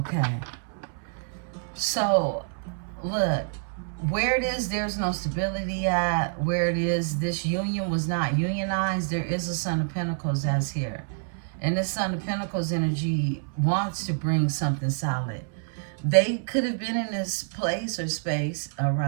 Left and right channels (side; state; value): left; silent; 60 dB below the other